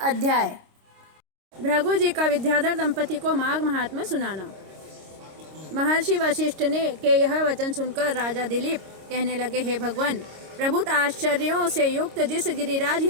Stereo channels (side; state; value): left; late; 26 ms